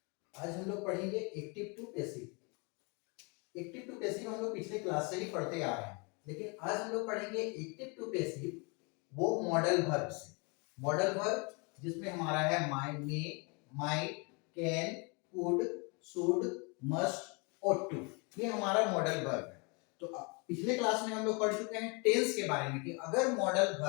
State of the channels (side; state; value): right; quieter; 31.7 dB